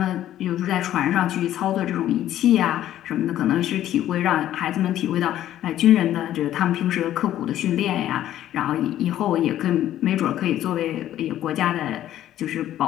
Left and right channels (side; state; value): right; quieter; 12.4 dB